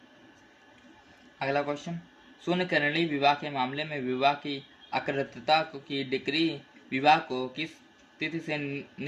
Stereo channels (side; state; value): both; identical; correlation 1.00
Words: अगला क्वेश्चन, शून्य करणीय विवाह के मामले में विवाह की अकृतता की डिग्री विवाह को किस तिथि से